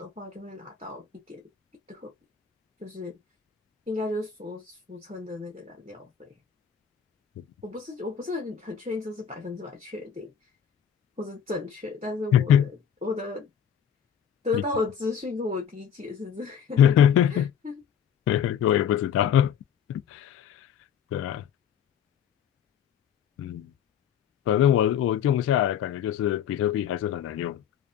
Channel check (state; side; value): quieter; right; 8.6 dB